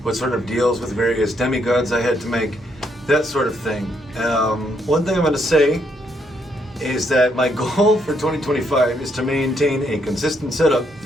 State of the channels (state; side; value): normal; both; correlation 0.74